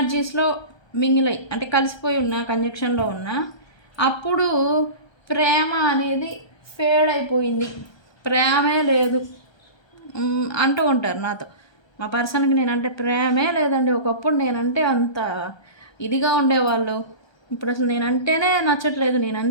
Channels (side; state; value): right; late; 1.3 ms